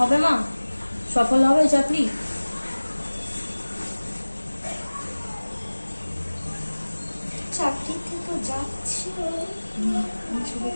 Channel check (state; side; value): inverted; both; correlation -1.00